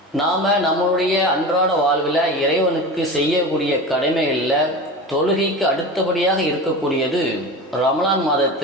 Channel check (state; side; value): normal; both; correlation 0.29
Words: நாம் நம்மளுடைய அன்றாட வாழ்வில் இறைவனுக்கு செய்யக்கூடிய கடமைகளில் தொழுகைக்கு அடுத்தபடியாக இருக்கக்கூடியது ரமலான்